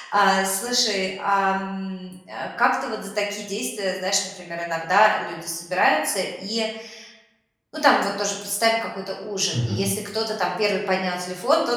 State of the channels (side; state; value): both; identical; correlation 1.00